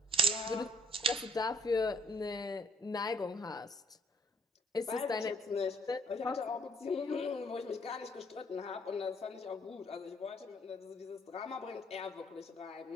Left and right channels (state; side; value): normal; both; correlation 0.65